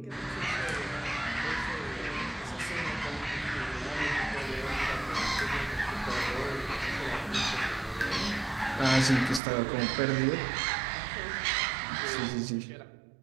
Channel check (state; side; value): drops out; left; at 9.4 s